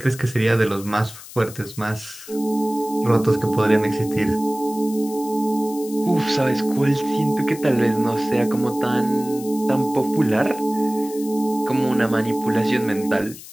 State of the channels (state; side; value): noise; left; hiss, 16 dB below the sound